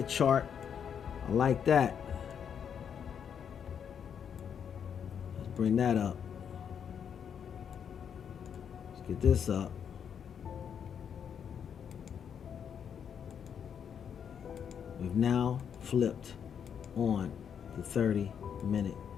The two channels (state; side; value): quieter; right; 7.9 dB